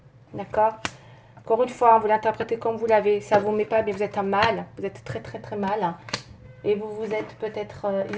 D'accord? Encore une fois, vous l'interprétez comme vous l'avez. Ça ne vous met pas bien, vous êtes en mal. Vous êtes très très très mal. Hein, et vous vous êtes peut-être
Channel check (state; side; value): identical; both; correlation 1.00